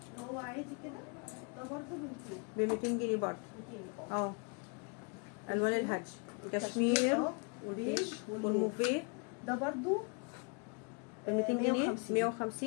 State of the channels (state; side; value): quieter; right; 35.3 dB